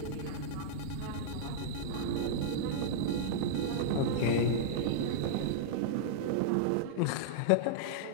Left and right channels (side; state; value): both; different; correlation -0.02